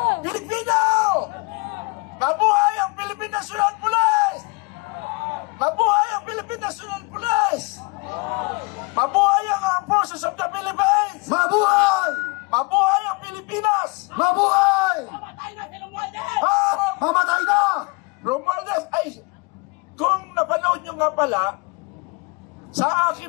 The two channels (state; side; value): quieter; right; 28.6 dB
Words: Pilipino! Mabuhay ang Philippine National Police! Mabuhay ang Philippine National Police! Mabuhay ang Armed Forces of the Philippines! Mabuhay! Mabuhay ang Pilipinas! Mabuhay! Mamatay na! Romualdez, ay, kung napanood nyo nga pala, sa